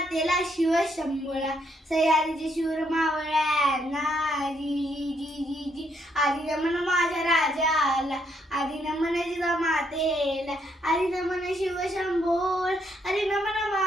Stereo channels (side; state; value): both; normal; correlation 0.74